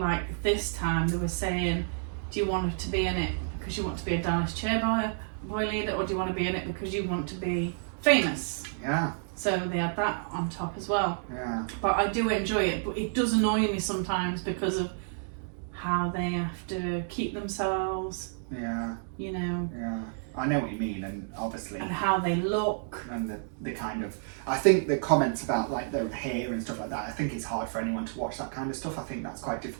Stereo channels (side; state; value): left; silent; digital silence